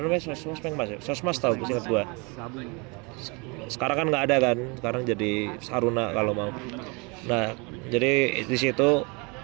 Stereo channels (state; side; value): quieter; left; 29.9 dB